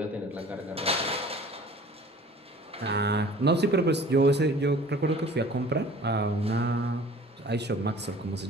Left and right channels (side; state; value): both; normal; correlation 0.47